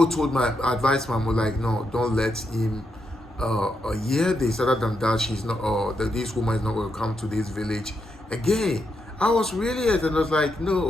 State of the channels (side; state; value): both; normal; correlation 0.82